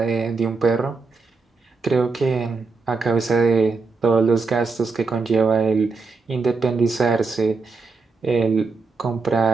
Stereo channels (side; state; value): left; quieter; 4.4 dB